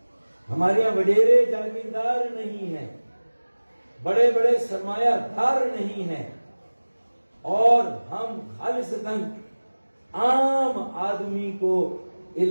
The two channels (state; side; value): inverted; both; correlation -1.00